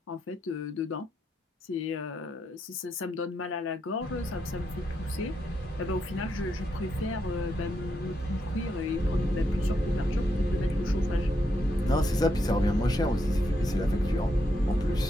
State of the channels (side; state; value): both; normal; correlation 0.81